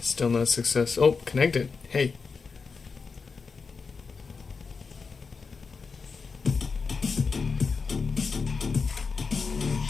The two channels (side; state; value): right; quieter; 4.9 dB